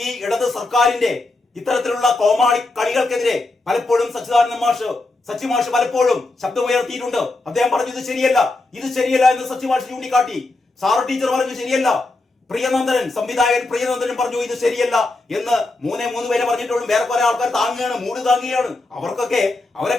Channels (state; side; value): quieter; right; 3.1 dB